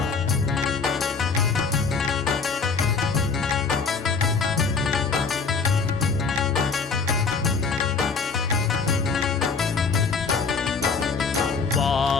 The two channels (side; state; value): right; quieter; 5.0 dB